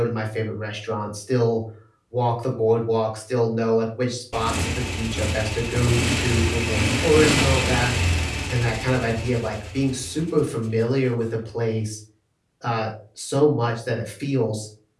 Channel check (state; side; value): identical; both; correlation 1.00